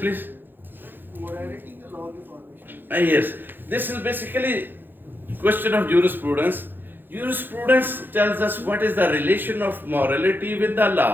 Morality, the law of the formation. Yes, this is basically question of jurisprudence. Jurisprudence tells us what is the relation of morality with the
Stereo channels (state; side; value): late; left; 0.095 ms